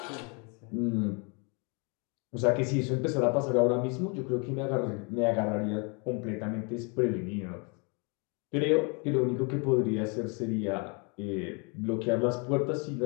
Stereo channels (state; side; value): quieter; right; 33.6 dB